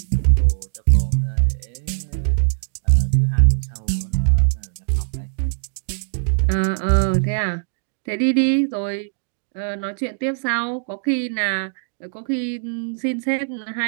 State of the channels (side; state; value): left; silent; digital silence